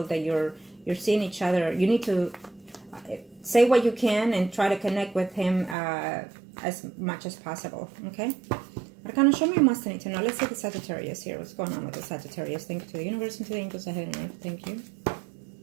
that you're seeing each other. You need to say what you can and try to connect with him as much as possible. Okay? Arcana, show me what must I need to know. Let's see the Sagittarius here. What's going on with the Sagittarius? Thank you to the universe and to the angels ahead and earth. Thank you.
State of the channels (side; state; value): left; drops out; at 5.8 s